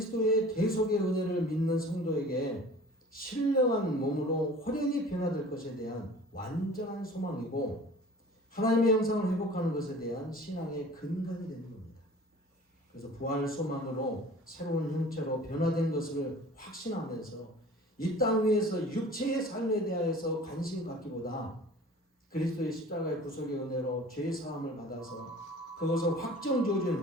대속의 은혜를 믿는 성도에게 신령한 몸으로 호련히 변화될 것에 대한 완전한 소망이고 하나님의 형상을 회복하는 것에 대한 신앙의 근간이 되는 겁니다. 그래서 부활 소망으로 새로운 형체로 변화된 것을 확신하면서 이 땅 위에서 육체의 삶에 대하여서 관심 갖기보다 그리스도의 십자가의 구속의 은혜로 죄 사함을 받아서 그것을 확정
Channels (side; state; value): both; normal; correlation 0.45